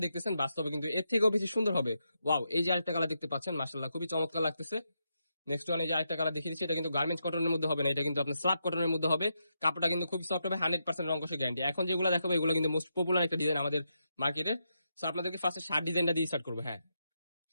দেখতেছেন বাস্তবে কিন্তু এর থেকেও বেশি সুন্দর হবে। ওয়াও, এই যে আরেকটা কালার দেখতে পাচ্ছেন, মাশাআল্লাহ খুবই চমৎকার লাগতেছে। নেক্সট ওয়ান, এই যে আরেকটা কালার দেখিয়ে দিচ্ছি। এটা কিন্তু গার্মেন্টস কটনের মধ্যে হবে না, এটা কিন্তু আপনার স্ল্যাব কটনের মধ্যে হবে। কাপড়টা কিন্তু খুবই সফট হবে, 100% রং কষে গ্যারান্টি। এখন যেগুলো দেখাবো এগুলো কিন্তু মোস্ট পপুলার একটা ডিজাইন আমাদের মার্কেটে। সো আপনাদেরকে ফার্স্টে শার্ট ডিজাইনটা দিয়ে স্টার্ট করবো। হ্যাঁ,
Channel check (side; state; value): both; inverted; correlation -0.83